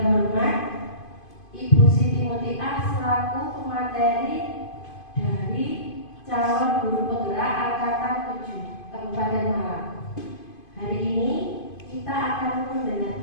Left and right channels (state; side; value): late; right; 2.5 ms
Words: Ibu Siti Mutia selaku pemateri dari calon guru penggerak angkatan 7 Kabupaten Malang. Hari ini kita akan